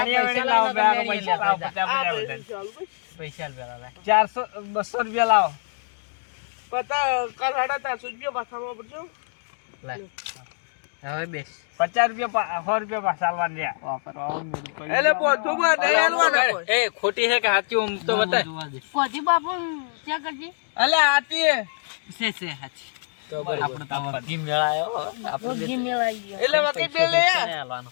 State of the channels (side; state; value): right; silent; digital silence